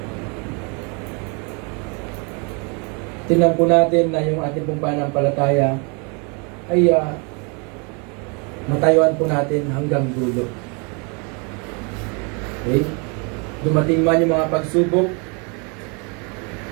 Tingnan po natin na yung ating pong pananampalataya ay matayuan po natin hanggang dulo. Okay? Dumating man yung mga pagsubok,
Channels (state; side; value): quieter; left; 33.7 dB